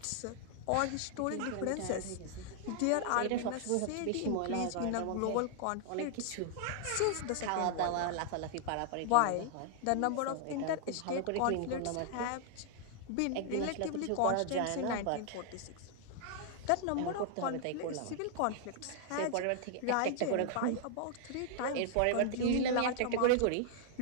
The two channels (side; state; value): both; different; correlation 0.00